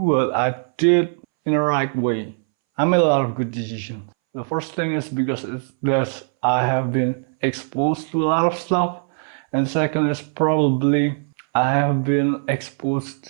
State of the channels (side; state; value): left; silent; 64 dB below the other